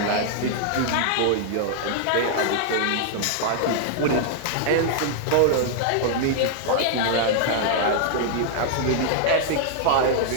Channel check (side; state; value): both; different; correlation -0.01